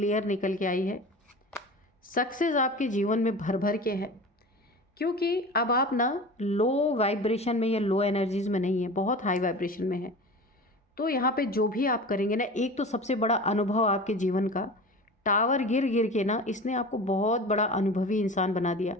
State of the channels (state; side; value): normal; both; correlation 0.34